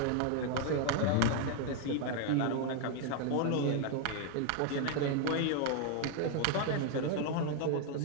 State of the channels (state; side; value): different; both; correlation 0.00